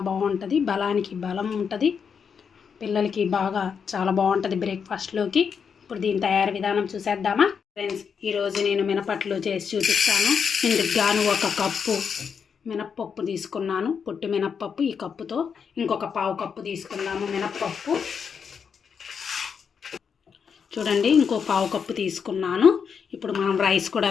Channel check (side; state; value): right; quieter; 6.6 dB